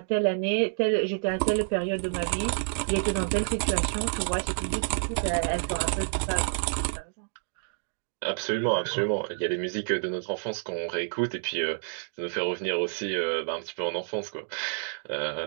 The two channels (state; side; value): silent; left; digital silence